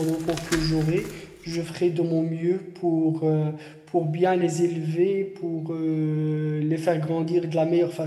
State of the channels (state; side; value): identical; both; correlation 1.00